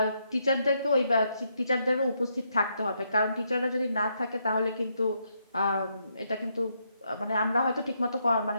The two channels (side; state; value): both; inverted; correlation -0.77